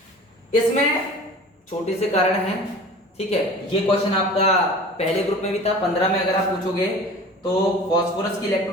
इसमें छोटे से कारण हैं, ठीक है। ये क्वेश्चन आपका पहले ग्रुप में भी था, 15 में अगर आप पूछोगे तो फास्फोरस की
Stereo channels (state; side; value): normal; both; correlation 0.41